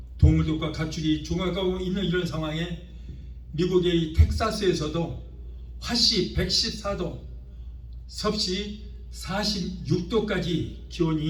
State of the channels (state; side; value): identical; both; correlation 1.00